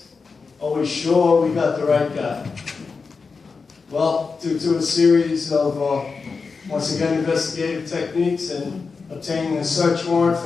are we sure we got the right guy? Well, due to a series of, once again, investigative techniques and obtaining a search warrant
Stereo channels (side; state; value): right; quieter; 4.8 dB